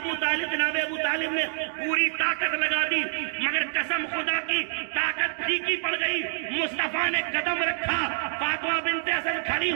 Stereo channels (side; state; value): left; silent; digital silence